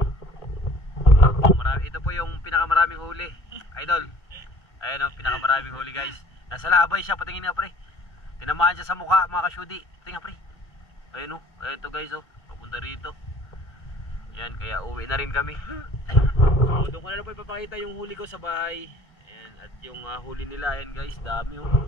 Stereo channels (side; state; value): right; late; 1.8 ms